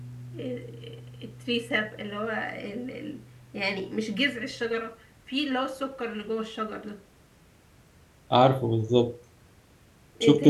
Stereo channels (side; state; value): both; identical; correlation 1.00